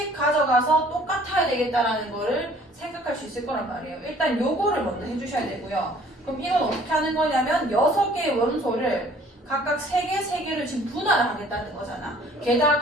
가져가서 똑같아야 되겠다라는 거를 생각할 수 있을 거란 말이에요. 일단 요거를 먼저 해주셔야 되고요. 그럼 이건 어떻게 하는 거냐면 6개의 원소를 각각 3개를 지금 분할을 하겠다는 거잖아.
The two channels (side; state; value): both; normal; correlation 0.55